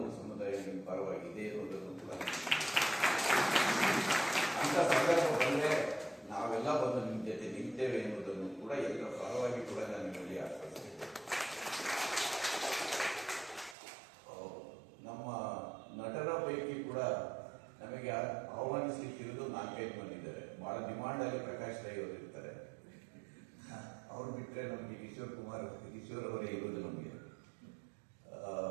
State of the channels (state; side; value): drops out; left; at 13.8 s